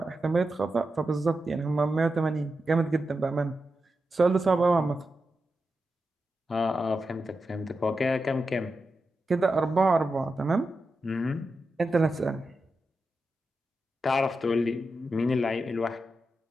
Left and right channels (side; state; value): both; normal; correlation 0.89